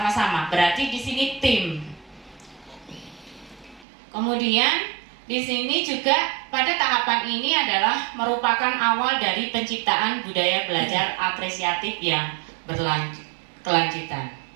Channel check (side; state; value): left; drops out; at 3.9 s